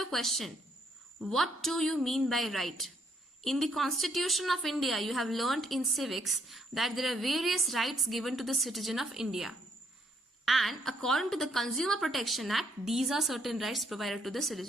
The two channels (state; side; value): normal; both; correlation 0.72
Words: a question. What do you mean by right? In the Constitution of India, you have learnt in civics that there are various rights given to the citizen of India. And according to the Consumer Protection Act, these are certain rights provided to the